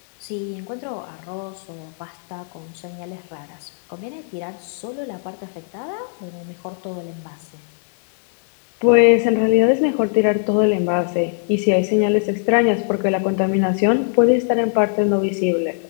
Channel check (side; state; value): right; silent; 59 dB below the other